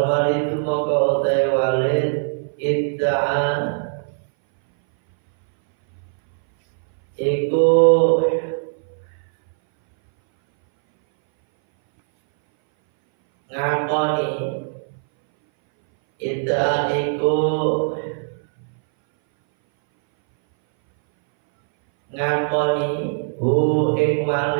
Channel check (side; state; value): left; silent; 61 dB below the other